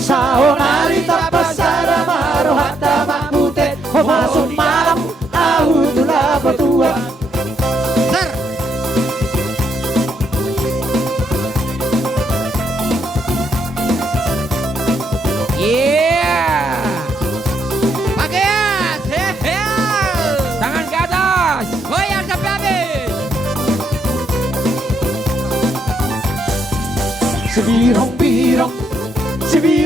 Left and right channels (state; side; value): normal; both; correlation 0.75